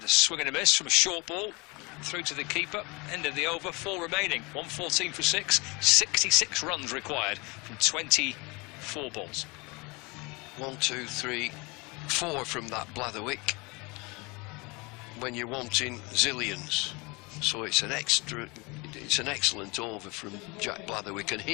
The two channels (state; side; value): quieter; right; 26.8 dB